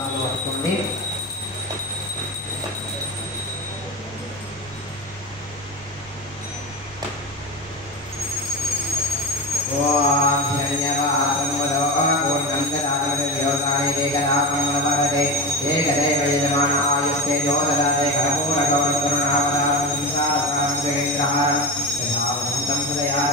పట్టుకోండి. ఓం ధన్యవాదం వదో పూర్ణం దదామి దేవతాయ ఏకదాపంగళవరదే ఏకదైవ యజమాన ఆయుస్తే దోదదాతే కర్పూర గౌరకరుణావతారం సంసారసారం జగేంద్రహారం యథావదంతం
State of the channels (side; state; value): both; normal; correlation 0.23